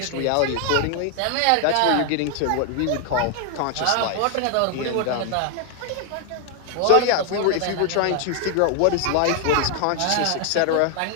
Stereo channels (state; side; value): different; both; correlation 0.00